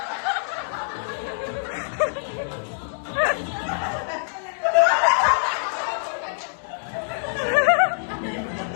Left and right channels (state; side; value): silent; right; digital silence